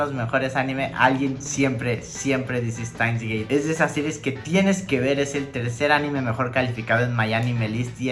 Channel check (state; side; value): identical; both; correlation 1.00